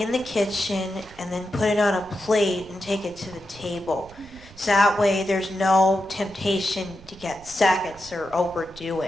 the kitchen and then put it on a plate and take it to the table. So that way there's no temptation to get seconds or overdo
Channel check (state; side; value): noise; right; rumble, 21 dB below the sound